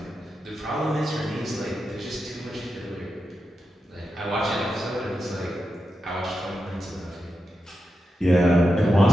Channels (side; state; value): both; normal; correlation 0.89